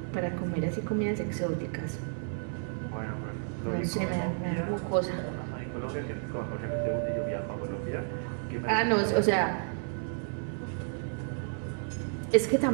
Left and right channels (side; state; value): left; silent; digital silence